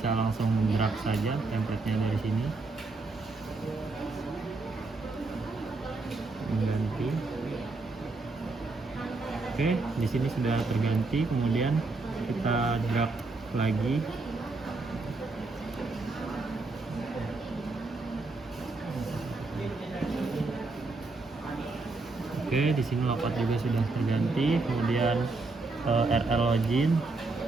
langsung drag saja template-nya dari sini, mengganti. Oke, di sini sudah terganti, kemudian kita drag lagi. Oke, di sini layout juga sudah terganti, kemudian RL login.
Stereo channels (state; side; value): quieter; left; 3.6 dB